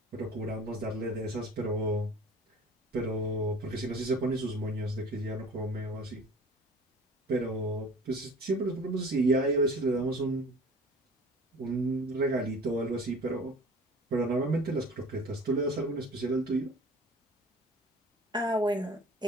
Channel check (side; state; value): both; normal; correlation 0.45